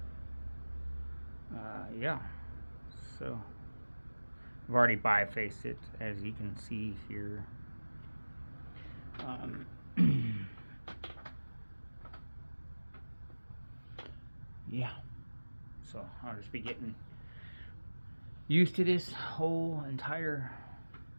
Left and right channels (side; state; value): both; inverted; correlation -1.00